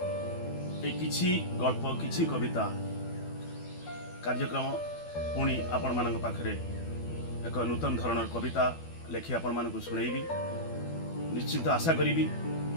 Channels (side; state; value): right; late; 12 ms